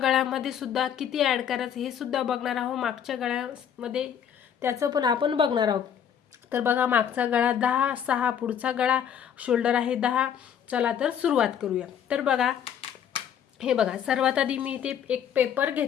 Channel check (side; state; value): right; quieter; 8.7 dB